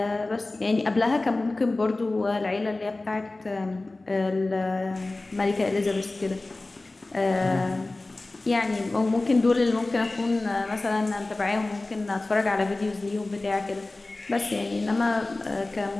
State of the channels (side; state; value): right; quieter; 3.0 dB